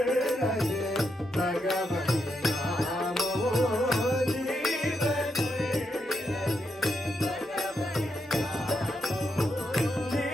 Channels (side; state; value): both; normal; correlation 0.82